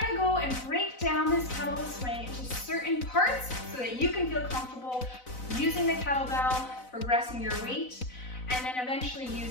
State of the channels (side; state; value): right; late; 4.0 ms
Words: going to go and break down this kettlebell swing into certain parts so that you can feel comfortable using the kettlebell, progressing your weight, and then eventually